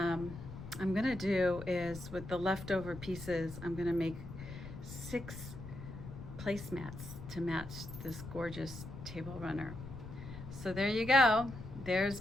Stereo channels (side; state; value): left; noise; rumble, 11 dB below the sound